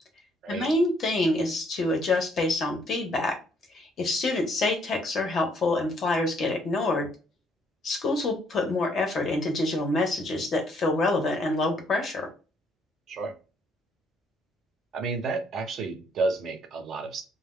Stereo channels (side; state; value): both; normal; correlation 0.67